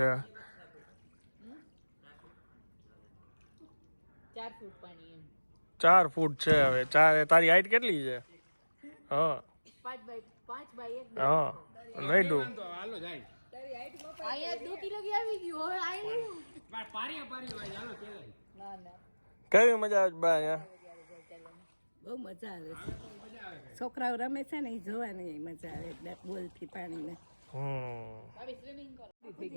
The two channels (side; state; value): both; inverted; correlation -1.00